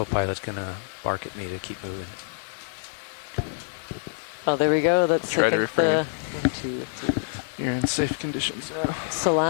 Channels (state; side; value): silent; right; 61 dB below the other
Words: going to bark at me to keep moving. Oh, there we go. That's, Try I think, the 1, 2, 3. You're in safe conditions now.